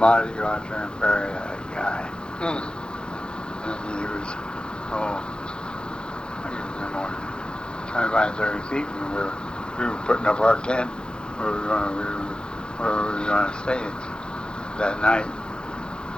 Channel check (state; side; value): late; right; 0.049 ms